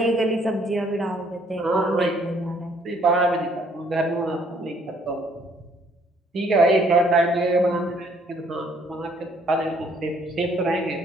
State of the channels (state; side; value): normal; both; correlation 0.64